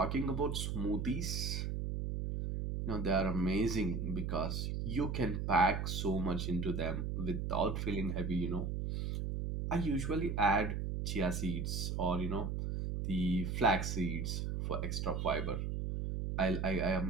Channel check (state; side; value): noise; right; hum, 2 dB below the sound